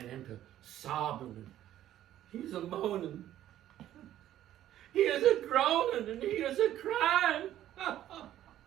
into sobbing, and he was a moaning. He was a groaning, and he was a crying.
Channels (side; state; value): left; quieter; 12.4 dB